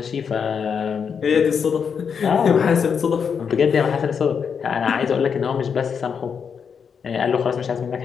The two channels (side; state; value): right; quieter; 6.6 dB